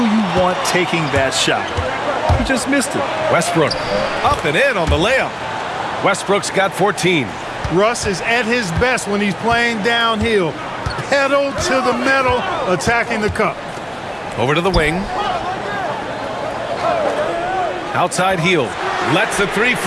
you want taking that shot. He just missed it. Westbrook up and in on the layup. Westbrook's got 14. Russ is at his best when he's playing downhill. Pedal to the metal, attacking the cup. Over to the wing. Outside Hield. Lets the 3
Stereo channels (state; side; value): identical; both; correlation 1.00